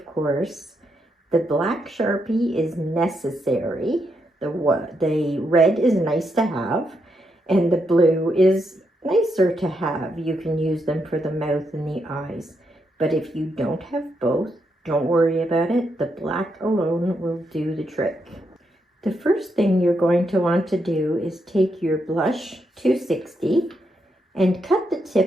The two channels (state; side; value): normal; both; correlation 0.80